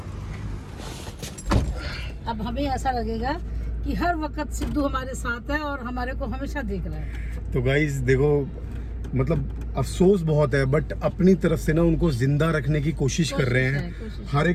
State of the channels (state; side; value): identical; both; correlation 1.00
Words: अब हमें ऐसा लगेगा कि हर वक्त सिद्धू हमारे साथ है और हमारे को हमेशा देख रहा है। तो गाइस देखो, मतलब अफसोस बहुत है, बट अपनी तरफ से ना उनको जिंदा रखने की कोशिश कर रहे हैं। कोशिश। हर